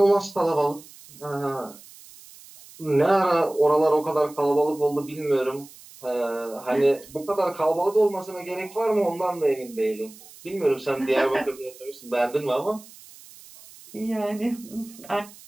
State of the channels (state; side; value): noise; right; hiss, 21 dB below the sound